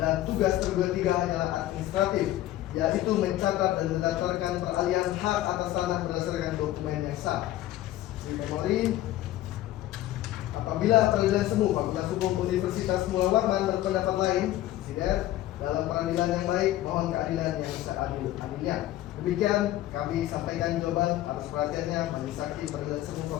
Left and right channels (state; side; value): quieter; right; 14.4 dB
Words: tugas tergugat 3 hanyalah administratif, yaitu mencatat dan mendaftarkan peralihan hak atas tanah berdasarkan dokumen yang sah. Di memori, apabila Peradilan Semu Fakultas Hukum Universitas Pulau Warman berpendapat lain, sider dalam peradilan yang baik, mohon keadilan yang seadil-adilnya. Demikian kami sampaikan jawaban atas perhatiannya. Majelis Hakim Peradilan Semu